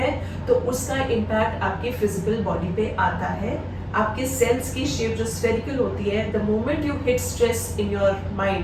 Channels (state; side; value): identical; both; correlation 1.00